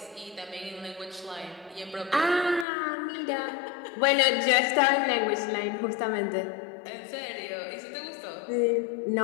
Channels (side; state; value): right; drops out; at 2.7 s